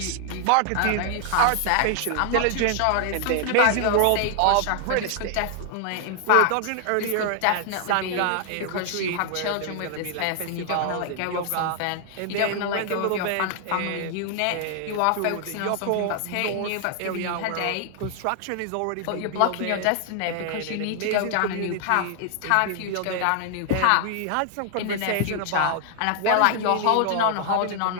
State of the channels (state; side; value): different; both; correlation 0.00